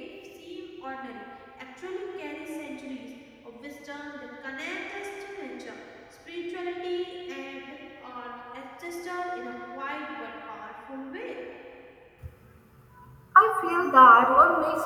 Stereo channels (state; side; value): identical; both; correlation 1.00